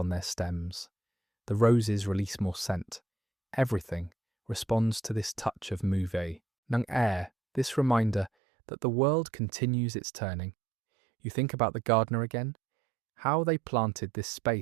their stems. The roses release more scent. Everything responds to this touch of mouve. Nung air, this reminder that the world continues its turning. You think about the gardener again, how they planted this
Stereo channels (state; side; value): drops out; left; at 8.3 s